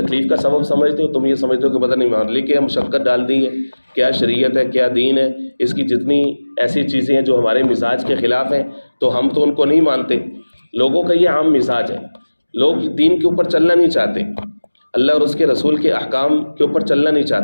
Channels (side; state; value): both; inverted; correlation -1.00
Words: کا سبب سمجھتے ہو، تم یہ سمجھتے ہو کہ پتہ نہیں معاملے کیا مشقت ڈال دی ہے، کیا شریعت ہے، کیا دین ہے، اس کی جتنی ایسی چیزیں ہیں جو ہمارے مزاج کے خلاف ہیں تو ہم تو ان کو نہیں مانتے۔ لوگوں کا یہ عام مزاج ہے، لوگ دین کے اوپر چلنا نہیں چاہتے، اللہ اور اس کے رسول کے احکام کے اوپر چلنا نہیں